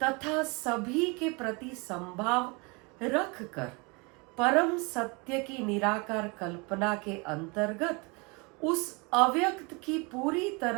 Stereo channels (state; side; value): quieter; left; 29.2 dB